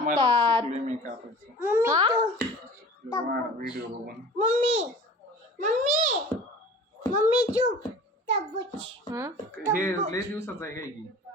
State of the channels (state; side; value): normal; both; correlation 0.42